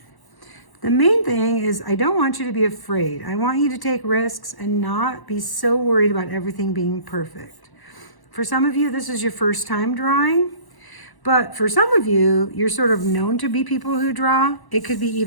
The main thing is I don't want you to be afraid. I want you to take risks and not be so worried about everything being perfect. For some of you, this is your first time drawing, But for some of you, you're sort of known to be people who draw. It could be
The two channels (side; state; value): right; late; 1.1 ms